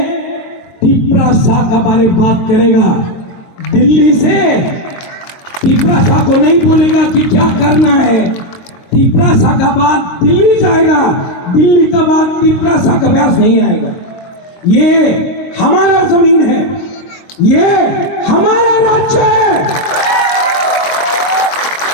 तिपरा शाह का बारे में बात करेगा। दिल्ली से तिपरा शाह को नहीं बोलेगा कि क्या करना है। तिपरा शाह का बात दिल्ली जाएगा, दिल्ली का बात तिपरा शाह का व्यास नहीं आएगा। ये हमारा जमीन है, ये हमारा राज्य है।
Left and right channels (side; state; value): right; late; 22 ms